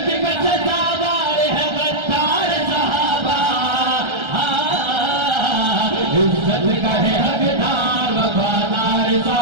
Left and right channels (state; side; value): late; left; 1.3 ms